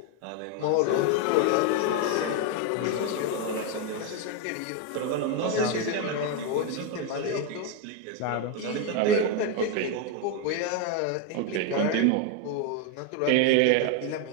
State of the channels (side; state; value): both; different; correlation 0.02